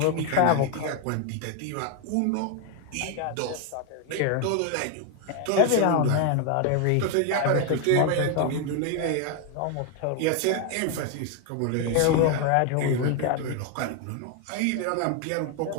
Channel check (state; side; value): different; both; correlation 0.01